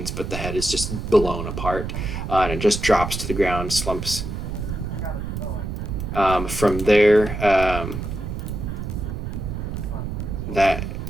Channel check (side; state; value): right; noise; rumble, 5 dB below the sound